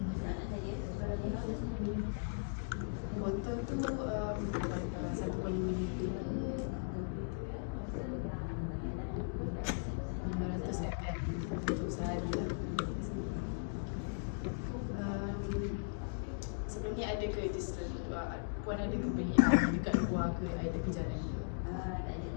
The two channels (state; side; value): silent; right; digital silence